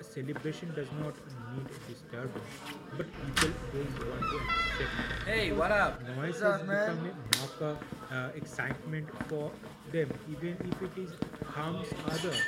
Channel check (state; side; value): identical; both; correlation 1.00